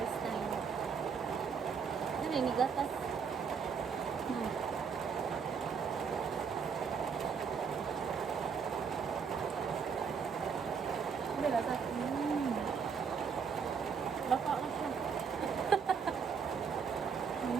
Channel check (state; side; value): quieter; left; 6.1 dB